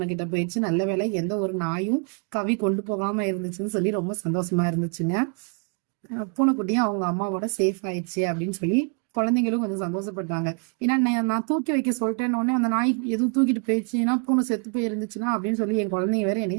கிட்ட போயிடுச்சு, நல்ல வேலை எந்த ஒரு நாயும் கவி கொண்டு போகாம இருந்துச்சுன்னு சொல்லி ரொம்ப சந்தோஷமா இருந்துச்சுங்க. பூனைக்குட்டியும் அவங்க அம்மாவோட சேஃப் ஆயிடுச்சு அப்படின்னு சொல்லி குழந்தைங்களும் கொஞ்சம் சந்தோஷப்பட்டாங்க. ஏன்னா நான் தூக்கி வைக்க சொல்லிட்டேன்னு அந்த நாய் எதுவும் தூக்கிட்டு போயிடுச்சுன்னா பூனை செத்து போய் இருந்துச்சுன்னா அப்படின்னு சொல்லி என் குழந்தைங்க வேற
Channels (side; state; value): left; quieter; 37.8 dB